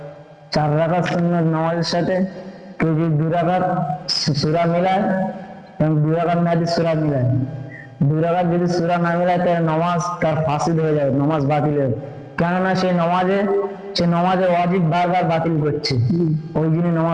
4 রাকাত সুন্নাত নামাজের সাথে কেউ যদি 2 রাকাত সূরা মিলায় এবং 2 রাকাত না যদি সূরা মিলায়, 2 রাকাত যদি সূরা না মিলায় তাহলে নামাজ তার ফাসিদ হয়ে যাবে, নামাজ বাতিল হবে। কেননা সে নামাজের ওয়াজিব বারবার বাতিল করছে, ওই জন্য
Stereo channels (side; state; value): both; identical; correlation 1.00